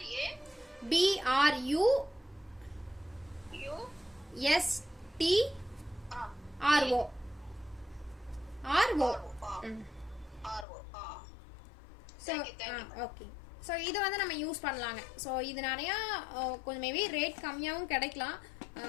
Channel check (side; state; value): right; drops out; at 10.7 s